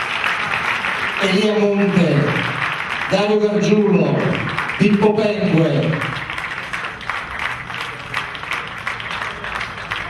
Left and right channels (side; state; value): both; identical; correlation 1.00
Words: Elia Monte, Dario Gargiulo, Pippo Pengue,